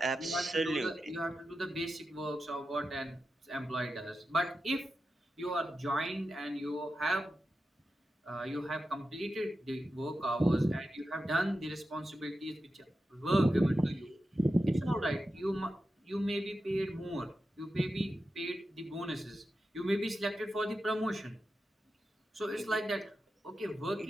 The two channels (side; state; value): both; normal; correlation 0.90